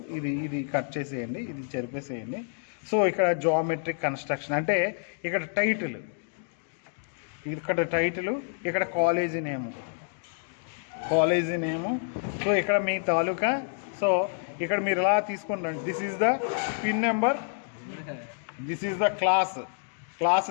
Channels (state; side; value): silent; right; digital silence